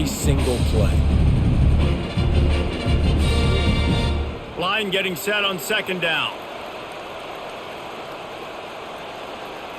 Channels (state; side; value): identical; both; correlation 1.00